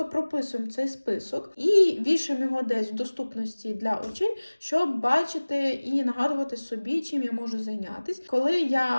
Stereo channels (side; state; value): both; inverted; correlation -1.00